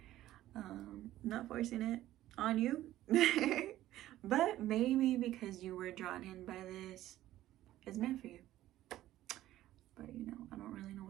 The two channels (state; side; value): quieter; left; 14.2 dB